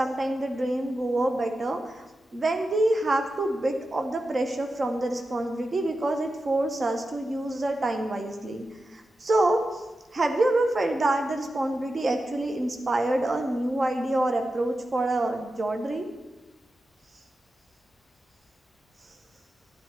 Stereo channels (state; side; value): normal; both; correlation 0.91